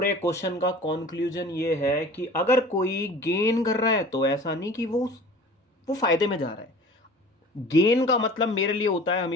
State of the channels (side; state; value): both; normal; correlation 0.43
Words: क्वेश्चन का कंक्लूजन ये है कि अगर कोई गेन कर रहा है तो ऐसा नहीं कि वो फायदे में जा रहा है। गेन का मतलब मेरे लिए होता है